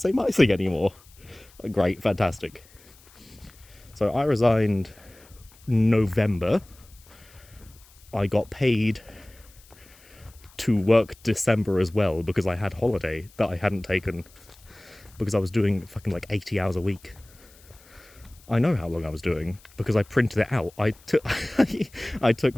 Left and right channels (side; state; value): left; noise; hiss, 26 dB below the sound